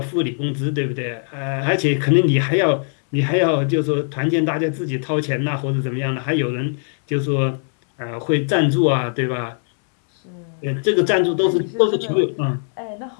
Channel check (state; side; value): silent; right; digital silence